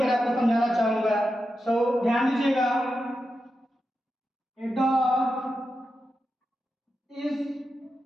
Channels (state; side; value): normal; both; correlation 0.89